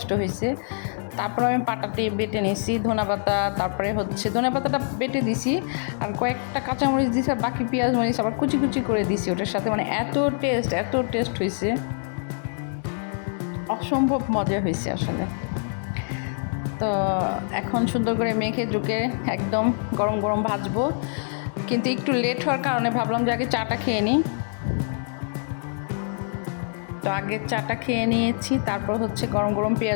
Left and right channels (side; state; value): right; silent; digital silence